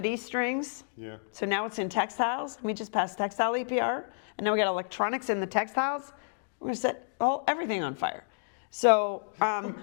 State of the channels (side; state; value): right; silent; digital silence